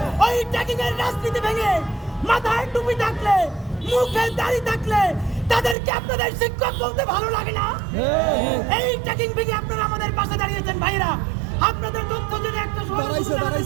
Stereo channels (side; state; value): left; drops out; at 5.8 s